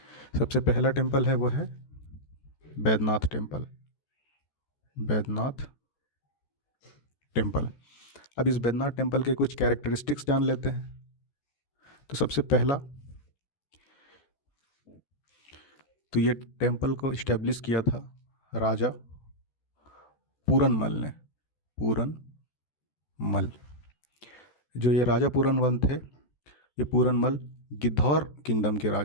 सबसे पहला टेम्पल है वो है बैद्यनाथ टेम्पल। बैद्यनाथ टेम्पल। अब इस बैद्यनाथ टेम्पल के कुछ कैरेक्टरिस्टिक्स जान लेते हैं। तो सबसे पहला, तो ये टेम्पल को इस्टेब्लिश किया था राजा पूरनमल ने। पूरनमल, जो ये राजा पूरनमल थे, ये पूरनमल गिद्धौर किंगडम के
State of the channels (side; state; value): right; late; 14 ms